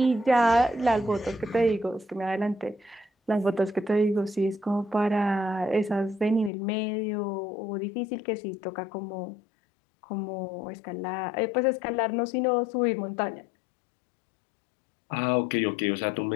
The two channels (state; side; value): drops out; right; at 6.5 s